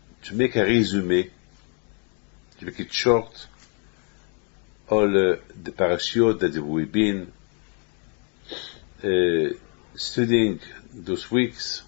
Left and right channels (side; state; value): right; quieter; 39.1 dB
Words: make a resume, to make it short, all the parashiot that we've been studying those weeks.